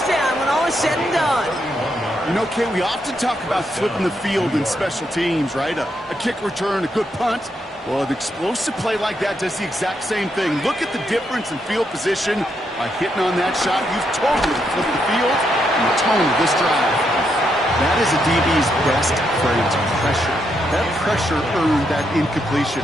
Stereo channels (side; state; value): both; normal; correlation 0.79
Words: down when all is said and done. You know, Kay, we often talk about flipping the field in special teams, right? A kick return, a good punt. Well, an explosive play like that does the exact same thing. Look at the difference in field position by hitting on that shot. You've totally flipped the field and the tone of this drive. That is a DB's best friend, pressure. That pressure earned that incompletion.